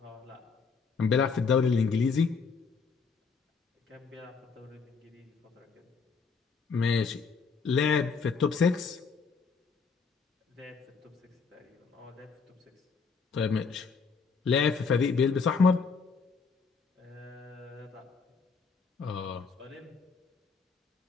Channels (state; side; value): quieter; right; 5.2 dB